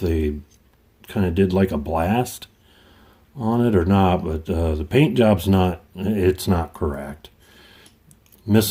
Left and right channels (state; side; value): identical; both; correlation 1.00